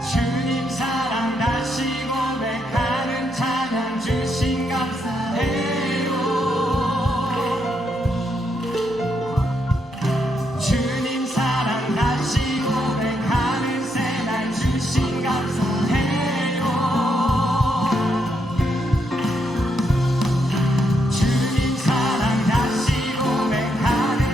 주님 사랑 다시 고백하는 찬양 주신 감사해요. 주님 사랑 다시 고백하는 새날 주신 감사해요. 주님 사랑 다시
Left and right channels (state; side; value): normal; both; correlation 0.78